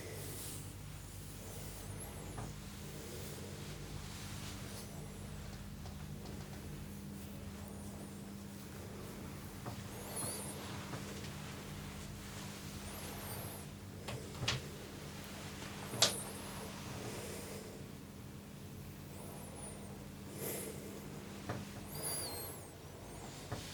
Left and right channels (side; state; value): both; identical; correlation 1.00